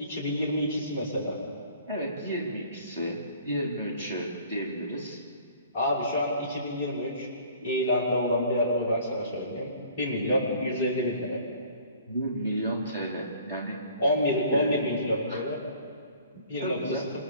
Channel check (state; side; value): inverted; both; correlation -0.52